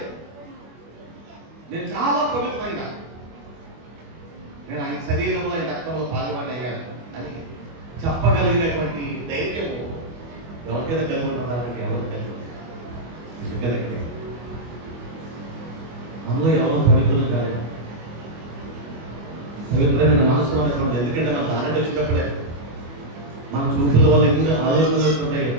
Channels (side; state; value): left; late; 25 ms